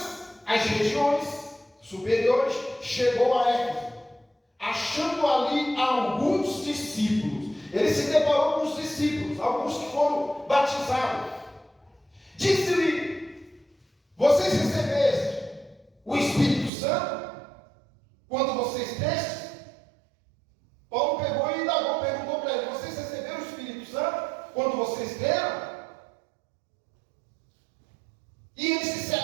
as regiões superiores, chegou a Éfeso, achando ali alguns discípulos. Ele se deparou com os discípulos, alguns que foram batizados. Disse-lhe: vocês recebeste o Espírito Santo quando vocês destes? Paulo pegou e indagou, perguntou para ele: vocês receberam o Espírito Santo quando vocês deram? E eles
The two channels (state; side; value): drops out; left; at 16.7 s